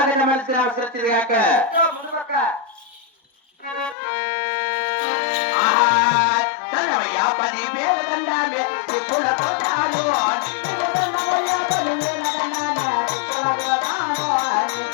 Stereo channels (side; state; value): right; drops out; at 4.0 s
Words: మలిసిన అవసరం వచ్చింది కాక ఇదో ముందు పక్క దండమయ్యా 10,000 దండాలే టిప్పుల కొట్టాలు.